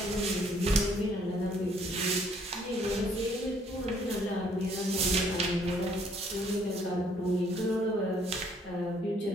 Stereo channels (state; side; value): normal; both; correlation 0.64